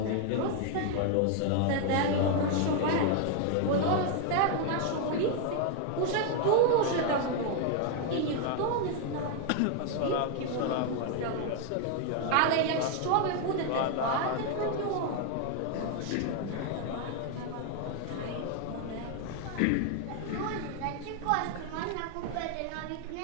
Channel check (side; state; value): both; different; correlation 0.00